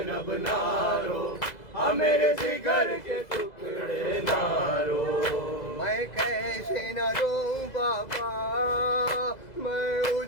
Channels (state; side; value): late; right; 2.0 ms